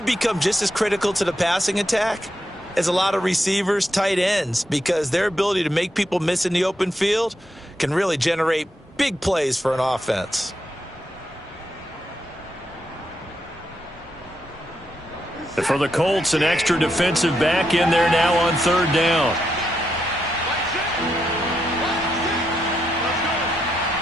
just as critical to the passing attack as a lot of receivers, tight ends, because their ability to make people miss in the open field can really generate big plays for an offense. For the Colts, an extra defensive back in there now on third down.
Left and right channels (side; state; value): both; normal; correlation 0.82